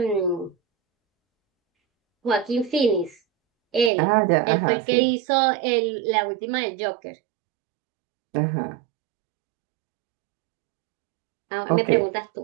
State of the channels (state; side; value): drops out; left; at 3.9 s